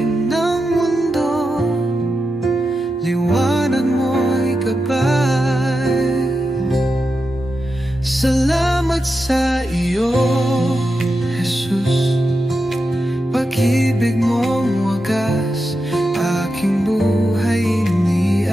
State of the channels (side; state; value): both; normal; correlation 0.88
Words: ng mundo, liwanag mo'y gabay. Salamat sa iyo, Jesus. Pag-ibig mong wagas, aking buhay